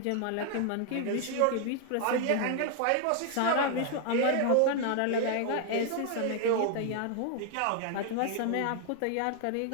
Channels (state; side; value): different; both; correlation 0.00